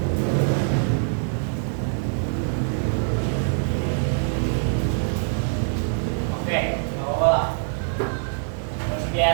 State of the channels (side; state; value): left; silent; digital silence